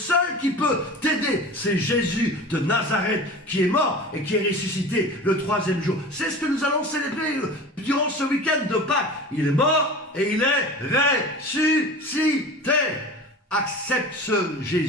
qui peut t'aider, c'est Jésus de Nazareth qui est mort et qui est ressuscité le 3e jour. C'est ce que nous allons célébrer durant ce week-end de Pâques. Il est mort et il est ressuscité. Accepte ce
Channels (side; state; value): both; normal; correlation 0.35